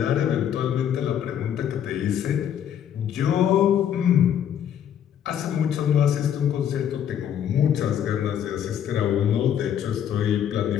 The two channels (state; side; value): quieter; right; 9.5 dB